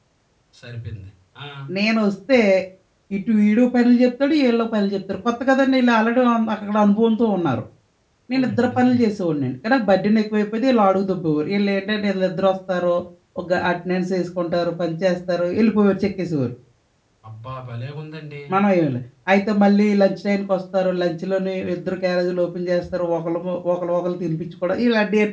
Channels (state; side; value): identical; both; correlation 1.00